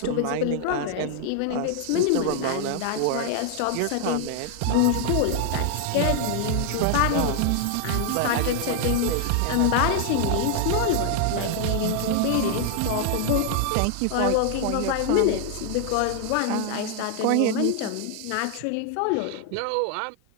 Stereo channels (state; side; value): different; both; correlation 0.00